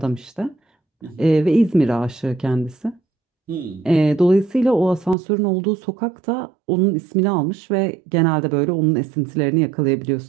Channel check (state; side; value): drops out; left; at 5.2 s